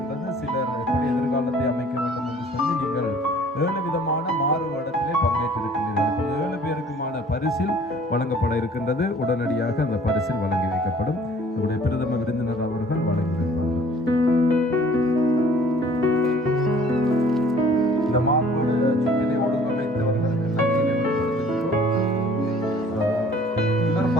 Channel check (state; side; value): normal; both; correlation 0.53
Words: சிலர் எப்படி எதிர்காலத்தை அமைக்க வேண்டும் என்று சொல்லி நீங்கள் 7 விதமான மாறுபடத்திலே பங்கேற்றிருக்கின்றீர்கள். 7 பேருக்குமான பரிசில் வழங்கப்பட இருக்கின்றது. உடனடியாக அந்த பரிசில் வழங்கி வைக்கப்படும். நம்முடைய பிரதம விருந்தினர் அவர்கள் வழங்கி வைப்பார்கள். இந்த மாறுபட சுற்றினை ஒழுங்கமைத்தவர்களுக்கு நன்றியை வெளிப்படுத்துகின்றோம்.